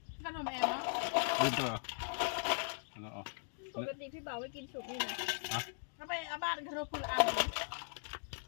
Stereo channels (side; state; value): right; silent; digital silence